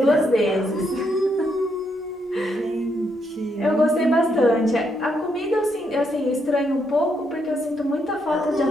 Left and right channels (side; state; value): both; normal; correlation 0.77